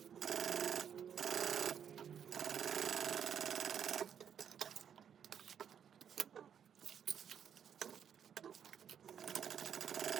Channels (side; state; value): left; quieter; 8.3 dB